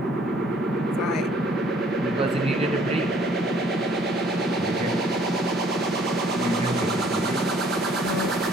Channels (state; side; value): normal; both; correlation 0.59